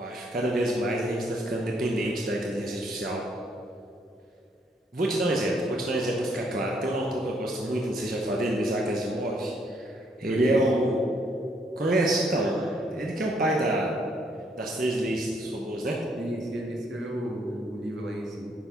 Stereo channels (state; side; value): normal; both; correlation 0.70